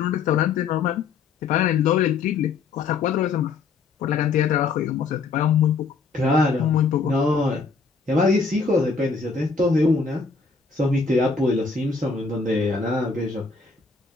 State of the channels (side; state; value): right; quieter; 4.7 dB